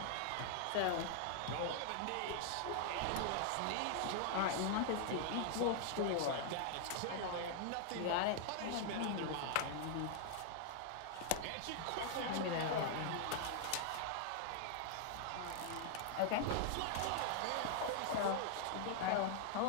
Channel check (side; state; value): both; different; correlation 0.00